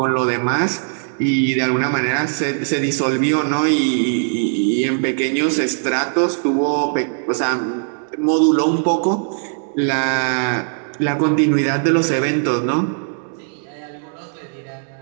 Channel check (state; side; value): silent; left; 66 dB below the other